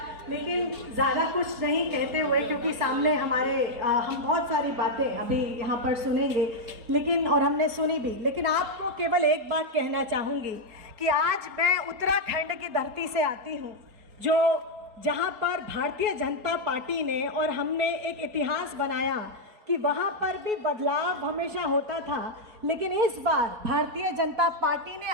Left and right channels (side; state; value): left; late; 4.2 ms